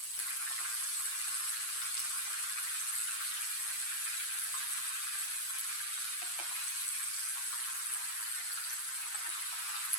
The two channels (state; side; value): late; right; 8.4 ms